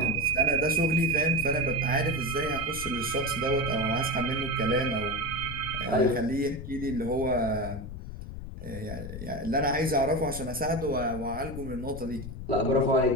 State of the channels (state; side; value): noise; left; rumble, 9 dB below the sound